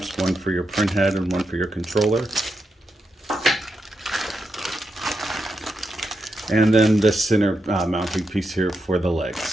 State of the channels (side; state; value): both; normal; correlation 0.85